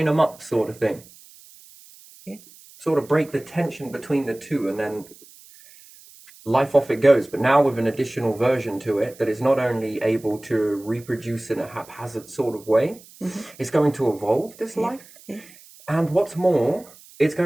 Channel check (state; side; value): noise; right; hiss, 23 dB below the sound